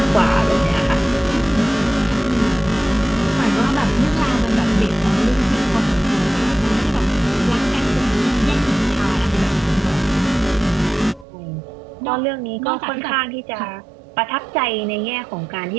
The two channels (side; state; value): left; drops out; at 11.2 s